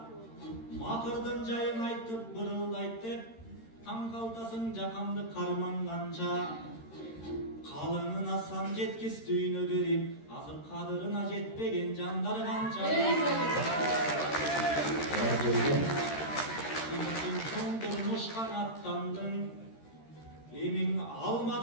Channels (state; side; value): late; right; 13 ms